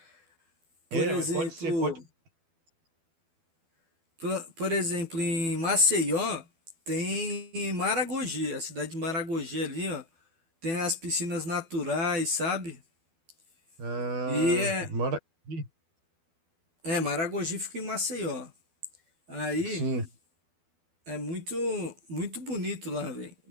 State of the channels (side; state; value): left; late; 12 ms